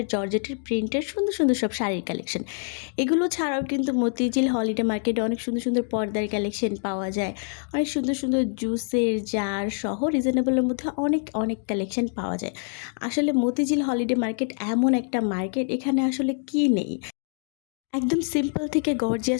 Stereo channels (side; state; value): right; silent; 56 dB below the other